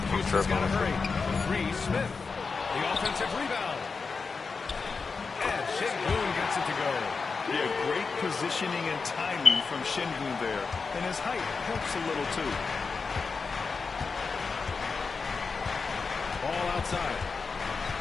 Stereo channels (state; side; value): quieter; right; 4.8 dB